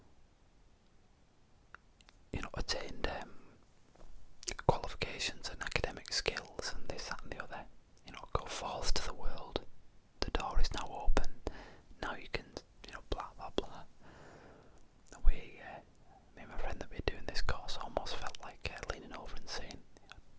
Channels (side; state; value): both; identical; correlation 1.00